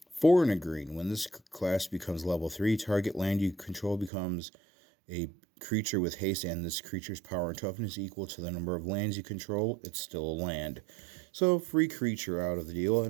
4 in a green. When this class becomes level 3, target land you control becomes a creature with haste, and this creature's power and toughness equal to the number of lands you control. It's still a land. So free creature out of the deal,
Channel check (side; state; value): left; drops out; at 4.1 s